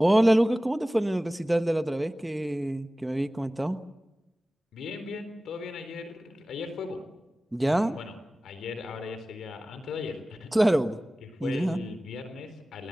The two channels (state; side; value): normal; both; correlation 0.97